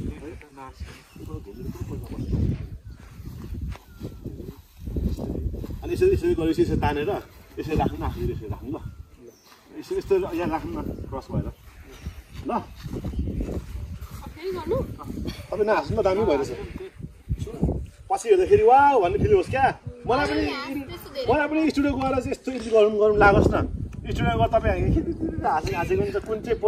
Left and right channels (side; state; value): both; identical; correlation 1.00